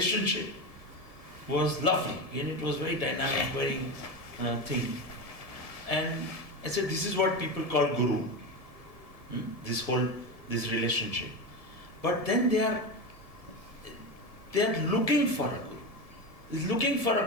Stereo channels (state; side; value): late; right; 1.7 ms